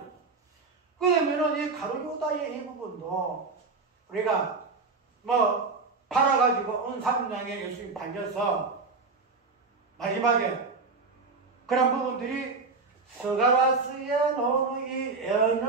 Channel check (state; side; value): quieter; left; 4.2 dB